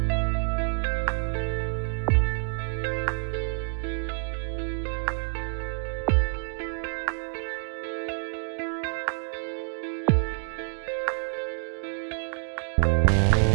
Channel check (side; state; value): left; silent; 60 dB below the other